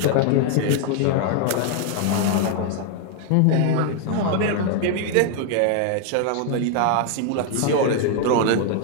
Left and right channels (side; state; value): both; different; correlation 0.00